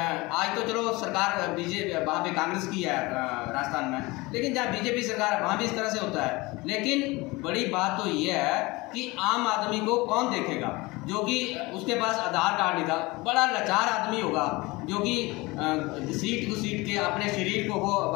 तो चलो सरकार बीजेपी वहाँ पे कांग्रेस की है राजस्थान में, लेकिन जहाँ बीजेपी सरकार है वहाँ भी इस तरह से होता है। लेकिन बड़ी बात तो ये है कि आम आदमी को कौन देखेगा, जो कि उसके पास आधार कार्ड नहीं था, बड़ा लाचार आदमी होगा जो कि सीट टू सीट के अपने शरीर को वो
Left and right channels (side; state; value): right; quieter; 22.9 dB